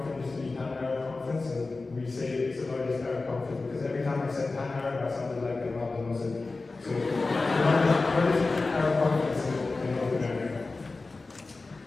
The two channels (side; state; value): right; quieter; 3.6 dB